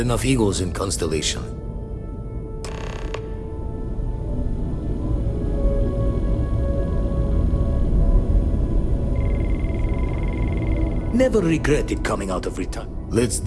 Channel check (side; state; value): both; identical; correlation 1.00